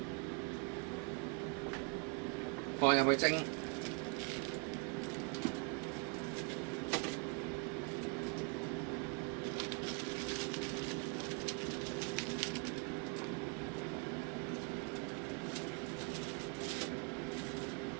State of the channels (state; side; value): quieter; left; 35.8 dB